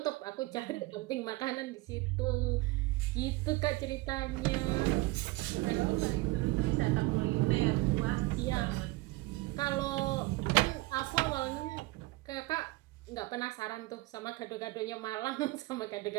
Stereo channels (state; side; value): quieter; left; 21.4 dB